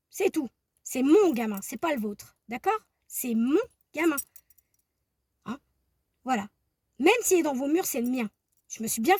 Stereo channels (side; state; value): both; identical; correlation 1.00